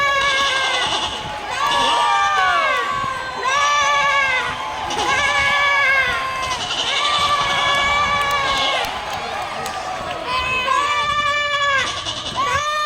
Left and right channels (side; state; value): both; identical; correlation 1.00